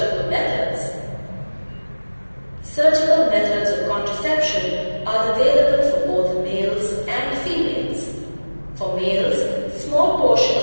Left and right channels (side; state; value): both; inverted; correlation -1.00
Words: methods. Surgical methods of contraception are available for both males and females. For males, small portion